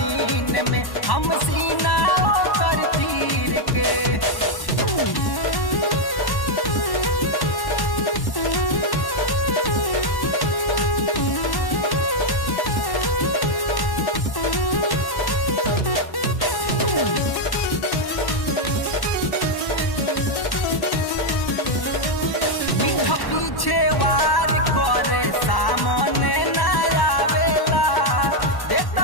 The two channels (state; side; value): late; right; 1.1 ms